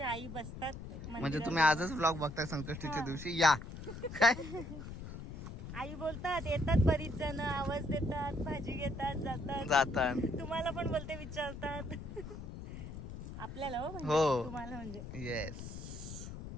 आई बसतात म्हणजे मंदिरात. तुम्ही आजच ब्लॉग बघताय संकष्टीच्या दिवशी या काय आई बोलतात येतात बरीच जण आवाज देतात भाजी घेतात जातात. जातात तुम्हाला पण बोलते विचारतात. आपल्याला हो म्हणजे हो. तुम्हाला म्हणजे येस.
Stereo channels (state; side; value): noise; left; rumble, 9 dB below the sound